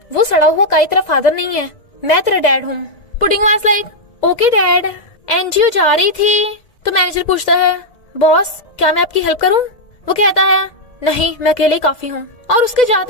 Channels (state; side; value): late; right; 1.7 ms